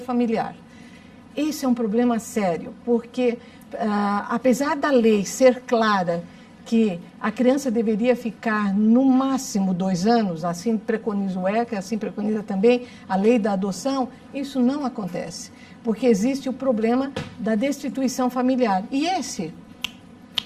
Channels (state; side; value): identical; both; correlation 1.00